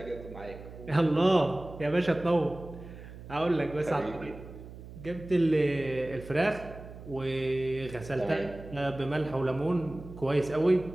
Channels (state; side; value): noise; right; hum, 15 dB below the sound